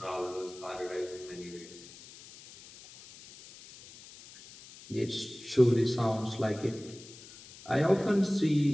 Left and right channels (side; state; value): left; noise; hiss, 19 dB below the sound